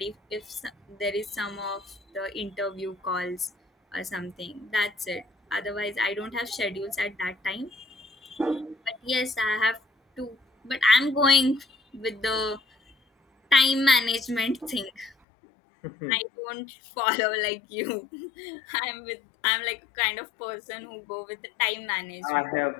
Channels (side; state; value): right; drops out; at 15.2 s